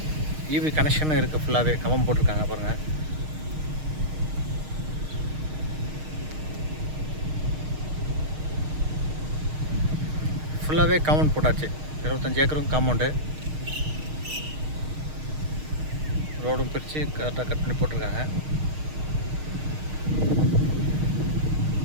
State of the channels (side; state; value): left; late; 6.5 ms